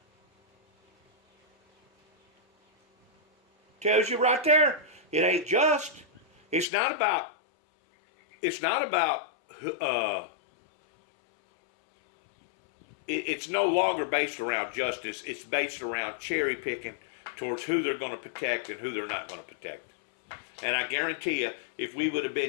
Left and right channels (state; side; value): drops out; right; at 6.7 s